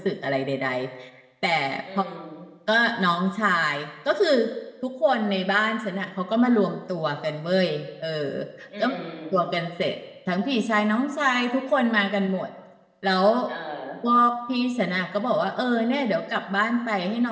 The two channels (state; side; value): identical; both; correlation 1.00